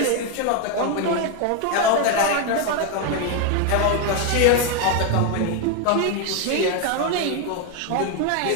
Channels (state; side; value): different; both; correlation 0.01